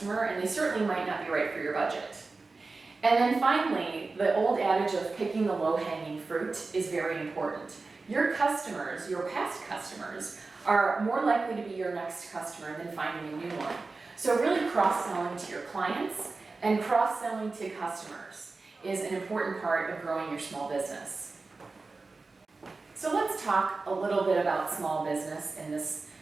and they certainly might not be right for your budget. And then finally, the old adage of picking the low-hanging fruit is very important. Your customers, your past customers, are more likely to be your next customer than finding a new one. So really cross-selling to your clients and cross-selling to customers is an important part of growing your small business. So let's talk a little bit about small business in this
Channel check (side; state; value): left; quieter; 3.8 dB